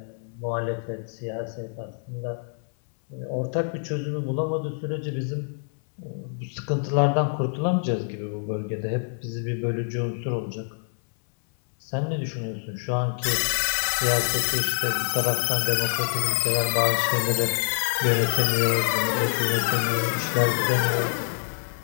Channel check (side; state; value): right; silent; 58 dB below the other